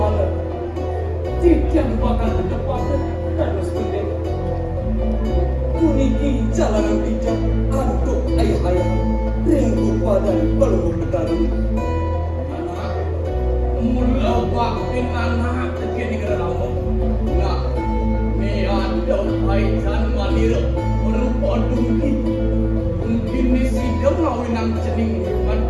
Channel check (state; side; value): identical; both; correlation 1.00